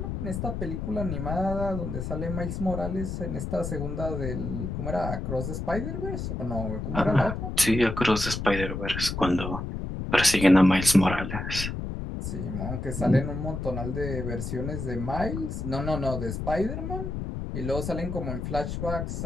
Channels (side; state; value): left; noise; rumble, 4 dB below the sound